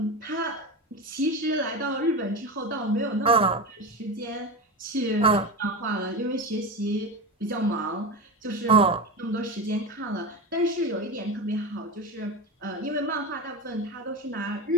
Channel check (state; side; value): normal; both; correlation 0.22